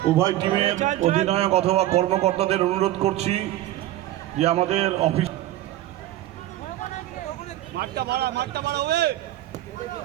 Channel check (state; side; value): quieter; left; 14.6 dB